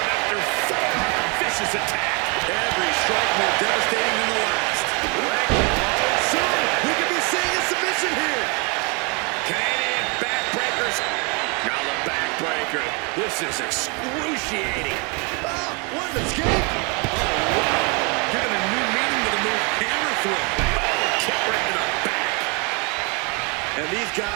After four, vicious attack. Every strike more devastating than the last. Soon, we could be seeing a submission here. Canadian backbreakers. Now the backbreaker. This is excruciating. Ah, what an escape. Giving a new meaning to the move hammer throw. Kick right to the back. And these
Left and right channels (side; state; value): left; quieter; 32.0 dB